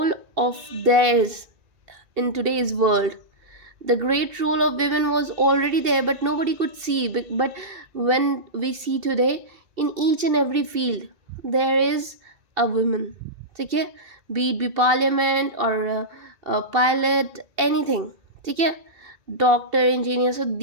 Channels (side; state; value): left; late; 2.7 ms